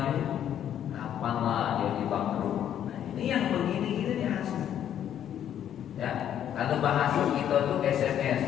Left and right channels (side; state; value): right; quieter; 10.1 dB